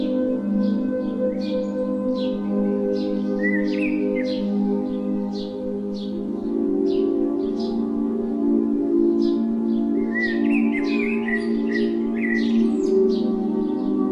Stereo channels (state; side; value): identical; both; correlation 1.00